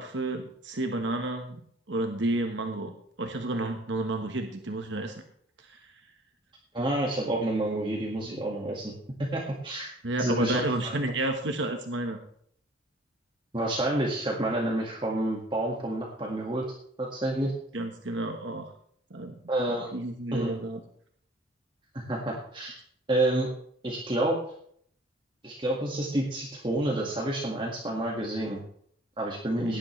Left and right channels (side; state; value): both; normal; correlation 0.52